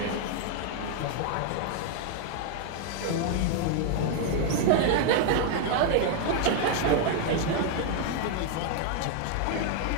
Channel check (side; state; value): both; different; correlation 0.00